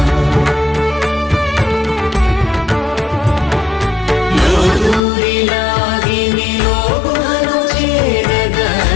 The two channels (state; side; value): drops out; right; at 5.0 s